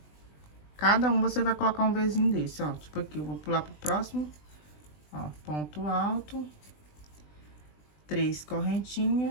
Cada um você vai colocar um Vzinho desse, ó. Tipo aqui, eu vou pular pro próximo, ó, ponto alto, 3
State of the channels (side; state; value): right; late; 20 ms